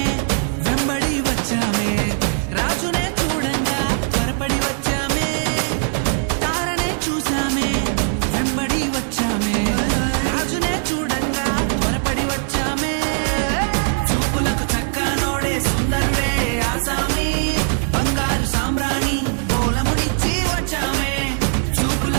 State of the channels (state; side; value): silent; left; 66 dB below the other